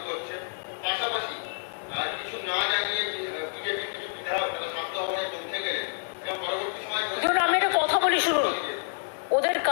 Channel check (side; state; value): right; silent; digital silence